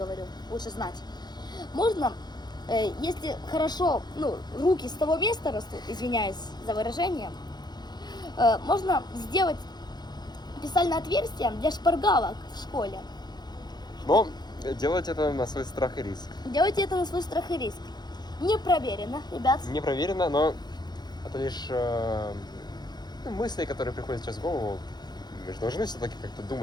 лучше знать. Можно, если хорошо, ну, руки с того места растут, извиняюсь за выражение, можно сделать специальное отверстие для шпаргалок в школе. Но делать это на свой страх и риск. Делайте это на свой страх и риск. Не проверено, ребят. Не проверено, но это лишь мысли, которые приходят сейчас в голову. Мы же должны все-таки как-то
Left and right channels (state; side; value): late; right; 0.20 ms